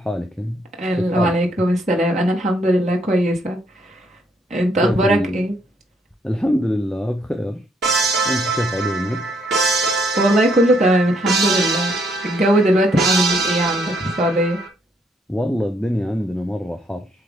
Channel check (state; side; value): normal; both; correlation 0.71